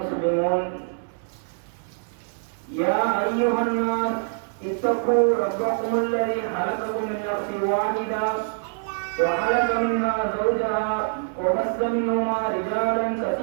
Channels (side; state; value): left; silent; 59 dB below the other